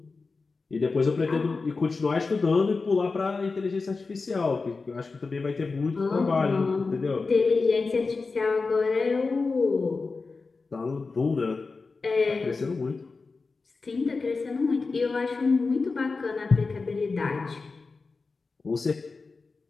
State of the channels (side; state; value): right; quieter; 4.1 dB